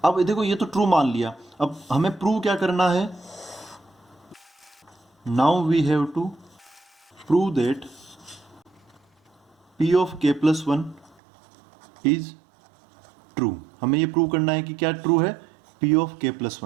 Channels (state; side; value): drops out; left; at 11.2 s